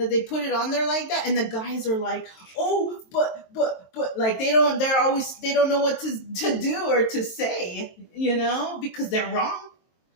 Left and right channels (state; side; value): late; right; 23 ms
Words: they put it on there like that, and the guys are like, oh, but like they don't know what to do or to say, you know, because they're wrong,